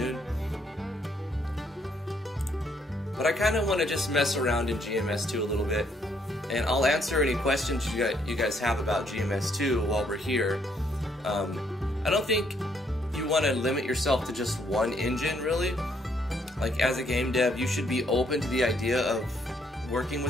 noon. But I kind of want to just mess around in GMS2 a little bit, and I'll answer any questions you guys have about GMS2 while we're here. I don't think you want to limit yourself to just one engine, really. Like, as a game dev, you should be open to the idea of working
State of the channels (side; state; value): both; normal; correlation 0.70